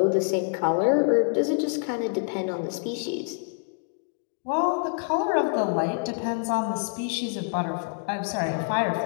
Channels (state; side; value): silent; right; 61 dB below the other